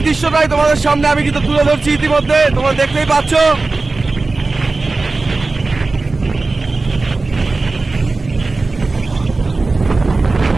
দৃশ্যটাই তোমাদের সামনে আমি কিন্তু তুলে ধরছি ইতিমধ্যে, তোমরা দেখতেই পাচ্ছ।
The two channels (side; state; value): left; quieter; 3.6 dB